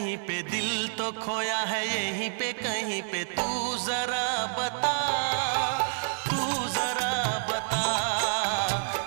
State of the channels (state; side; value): silent; left; digital silence